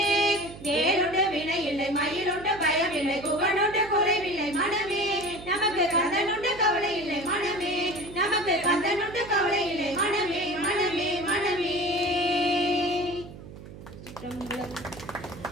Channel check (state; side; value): noise; right; hum, 15 dB below the sound